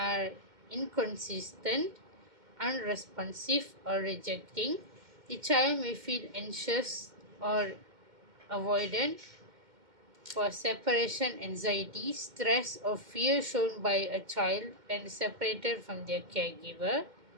inconsistent, unresponsive, or rejecting, the child may feel anxious or avoidant. For separation anxiety, stress or fear shown by a child when separated from their caregiver.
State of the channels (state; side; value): late; left; 2.1 ms